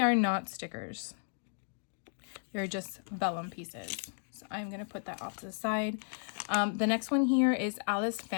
not stickers. They're just vellum pieces. So I'm going to put that off to the side. The next one here is Alice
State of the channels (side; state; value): right; silent; digital silence